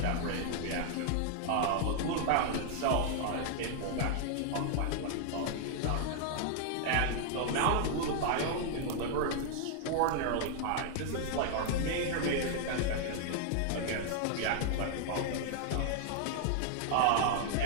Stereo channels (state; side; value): different; both; correlation 0.00